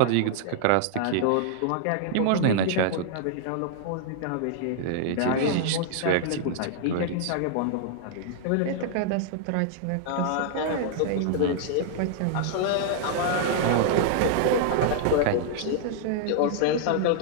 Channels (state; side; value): different; both; correlation -0.01